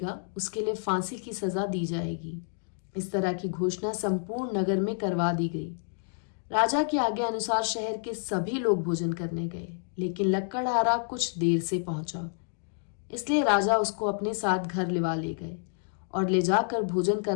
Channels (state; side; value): silent; right; digital silence